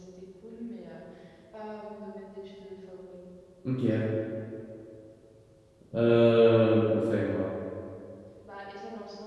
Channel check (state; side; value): identical; both; correlation 1.00